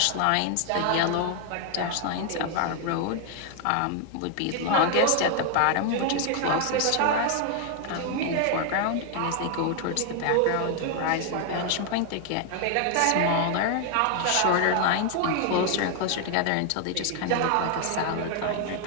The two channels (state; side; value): different; both; correlation 0.00